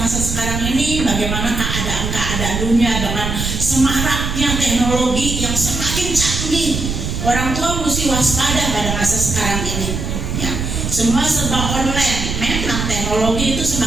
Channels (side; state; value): right; noise; rumble, 3 dB below the sound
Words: sekarang ini bagaimana keadaan dunia dengan semaraknya teknologi yang semakin canggih. Orang tua mesti waspada pada masa sekarang ini, ya. Semua serba online, memang teknologi itu